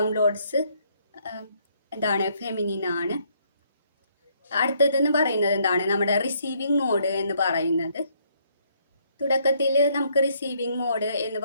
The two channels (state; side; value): inverted; both; correlation -0.69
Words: എന്താണ്? ഫെമിനിൻ ആണ്. അടുത്തതെന്ന് പറയുന്നത് എന്താണ്? നമ്മുടെ റിസീവിങ് മോഡ് എന്ന് പറയുന്നത്. തുടക്കത്തിൽ നമുക്ക് റിസീവിങ് മോഡ് എന്ന്